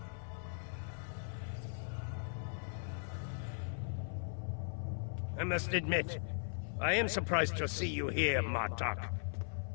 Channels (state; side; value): silent; right; 52 dB below the other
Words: I must admit, I am surprised to see you here, Martok.